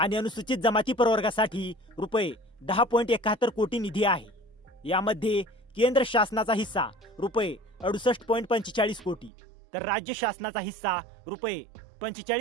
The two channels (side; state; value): left; drops out; at 9.3 s